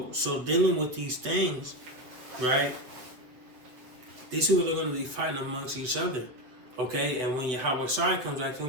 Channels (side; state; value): left; late; 7.6 ms